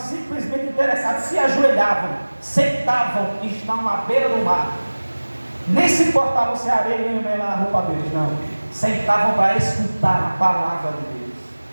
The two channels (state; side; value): inverted; both; correlation -1.00